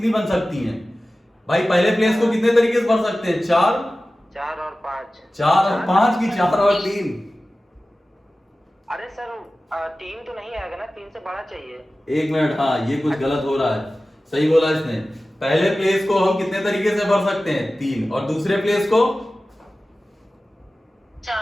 बन सकती हैं? भाई पहले प्लेस को कितने तरीके से भर सकते हैं? 4 4 और 5। 4 और 5 की 4 और 3? अरे सर 3 तो नहीं आएगा ना, 3 से बड़ा चाहिए। 1 मिनट, हाँ ये कुछ गलत हो रहा है। सही बोला इसने। पहले प्लेस को हम कितने तरीके से भर सकते हैं? 3। और दूसरे प्लेस को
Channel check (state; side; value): normal; both; correlation 0.96